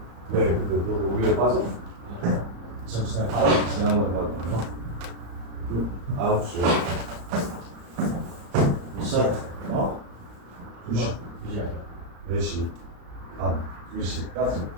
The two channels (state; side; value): late; left; 35 ms